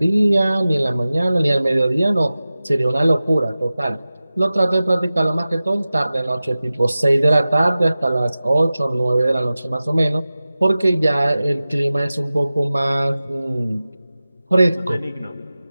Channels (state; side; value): inverted; both; correlation -0.96